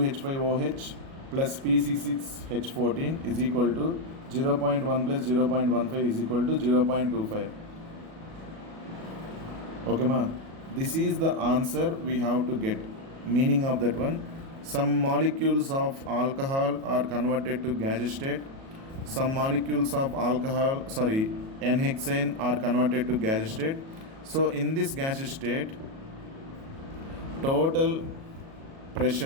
plus Pc6H14 is equal to 0.1 plus 0.15 is equal to 0.25. Okay ma, this is the answer we have to get. Meaning of that one, some molecules of alcohol are converted to gaseous state, some molecules of N-hexane are converted to gaseous state. So in this gaseous state, total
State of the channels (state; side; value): late; left; 37 ms